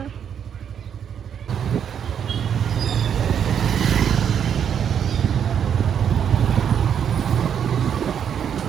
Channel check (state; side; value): quieter; left; 8.3 dB